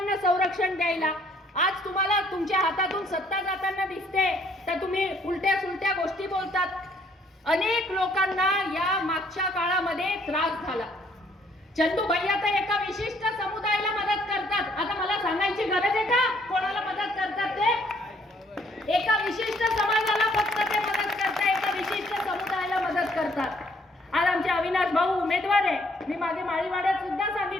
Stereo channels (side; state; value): both; normal; correlation 0.64